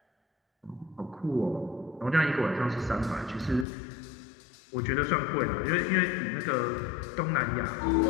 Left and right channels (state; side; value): drops out; right; at 3.7 s